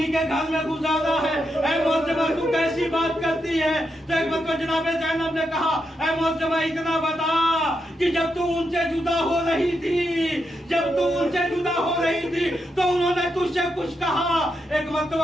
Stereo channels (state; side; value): normal; both; correlation 0.83